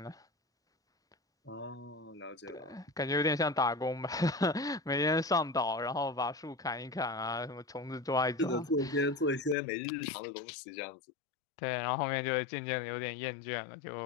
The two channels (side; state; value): right; drops out; at 9.6 s